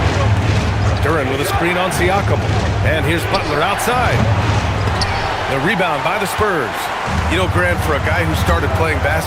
Duran with a screen on Siakam. And here's Butler outside. The rebound by the Spurs. You know, Grant, for a guy who started playing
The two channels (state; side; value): noise; left; hum, 22 dB below the sound